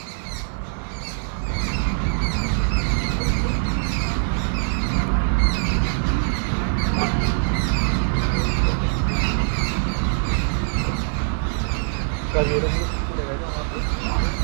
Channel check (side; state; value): left; silent; digital silence